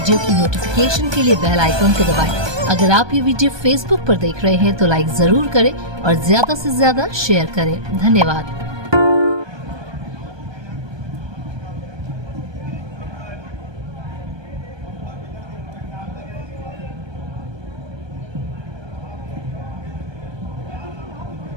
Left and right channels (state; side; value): late; left; 1.2 ms